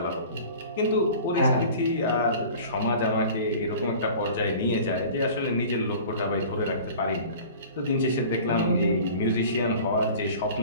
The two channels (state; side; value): inverted; both; correlation -0.42